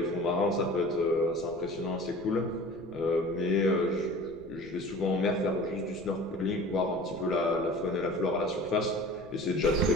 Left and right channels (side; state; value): left; noise; rumble, 24 dB below the sound